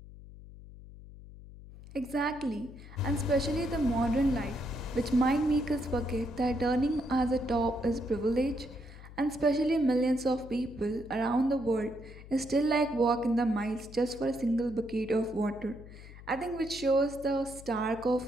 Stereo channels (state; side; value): noise; left; hum, 17 dB below the sound